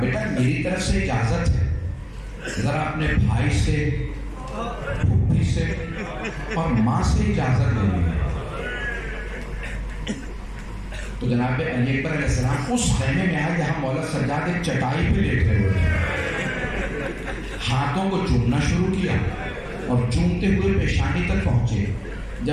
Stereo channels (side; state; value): both; identical; correlation 1.00